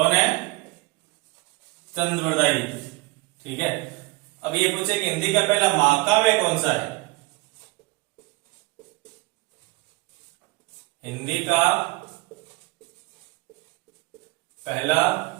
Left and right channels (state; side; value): quieter; left; 24.8 dB